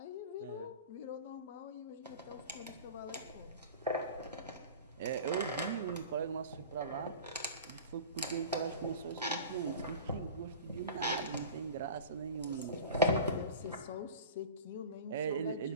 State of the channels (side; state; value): both; inverted; correlation -0.35